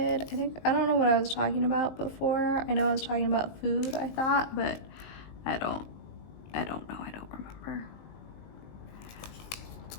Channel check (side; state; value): right; late; 19 ms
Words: I don't know what I was talking about before. I know I was talking about food, I thought, but I don't know, I don't remember.